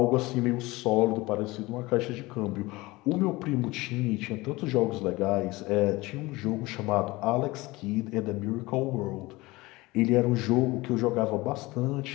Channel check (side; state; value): right; quieter; 21.3 dB